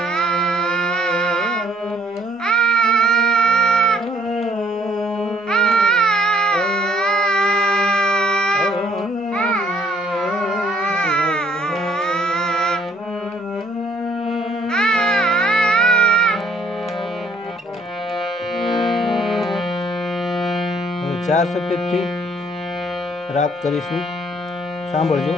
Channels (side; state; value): both; normal; correlation 0.62